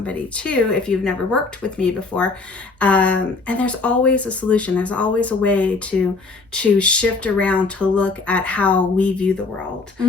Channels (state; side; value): quieter; right; 3.9 dB